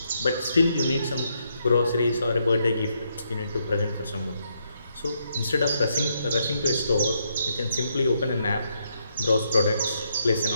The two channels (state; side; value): inverted; both; correlation -0.77